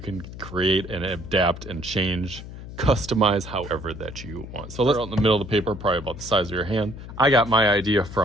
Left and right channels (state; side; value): noise; left; hum, 12 dB below the sound